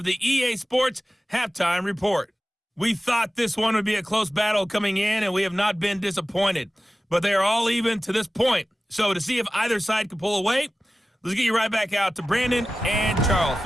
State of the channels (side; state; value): both; normal; correlation 0.95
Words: the EA Sports Halftime Report. We thought this one would be a close battle coming in, and we have not been disappointed. But they are all even to this point. So to see if either side can pull away, let's get you right back out to Brandon and Charles